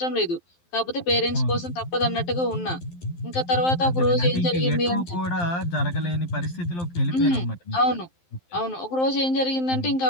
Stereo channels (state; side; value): late; right; 12 ms